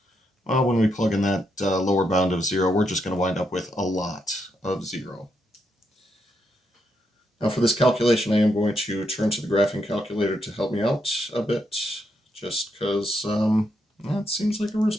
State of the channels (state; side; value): normal; both; correlation 0.80